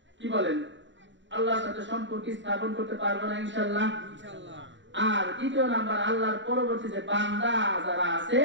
কি বলেন? আল্লাহর সাথে সম্পর্ক স্থাপন করতে পারবো না ইনশাআল্লাহ। আর দ্বিতীয় নাম্বার, আল্লাহর পরবর্তী যে বান্দা যারা আছে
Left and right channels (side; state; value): left; late; 0.54 ms